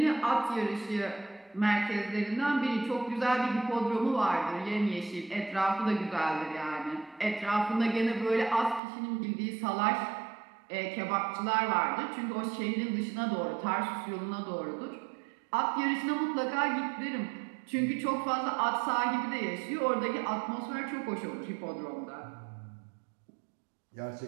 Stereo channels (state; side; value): drops out; left; at 8.8 s